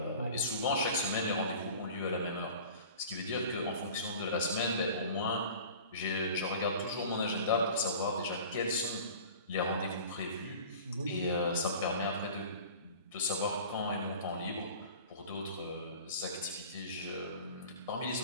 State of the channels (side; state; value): both; inverted; correlation -0.41